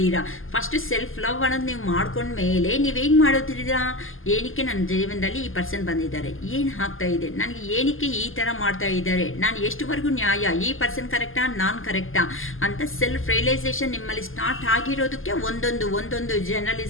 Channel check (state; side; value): late; right; 0.59 ms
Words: ಫಸ್ಟ್ ಸೆಲ್ಫ್ ಲವ್ ಅನ್ನೋದು ನೀವು ಮಾಡ್ಕೊಂಡ ಮೇಲೆ ನೀವೇನು ಮಾಡೋದಿದ್ದೀರಾ, ಏನಕ್ಕೆ ನನ್ನ ಜೀವನದಲ್ಲಿ ಈ ಪರ್ಸನ್ ಬಂದಿದ್ದಾರೆ, ಏನು ಆಗ್ತಾ ಇದೆ ನನಗೆ, ಏನಕ್ಕೆ ಈ ಥರ ಮಾಡ್ತಾ ಇದ್ದಾರೆ, ನಾನು ಎಷ್ಟುವರೆಗೂ ನ್ಯಾಯ, ಈ ಪರ್ಸನ್ ಕರೆಕ್ಟಾ ನಾನು ಕರೆಕ್ಟಾ ಅಂತ ಸೆಲ್ಫ್ ರಿಯಲೈಸೇಷನ್ ನಿಮ್ಮಲ್ಲಿ ಸ್ಟಾರ್ಟ್ ಆಗಿರೋದಕ್ಕೆ ಒಂದೊಂದು